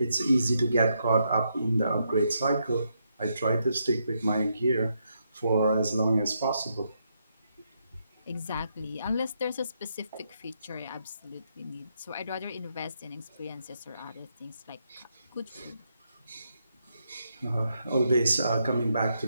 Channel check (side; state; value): both; inverted; correlation -0.79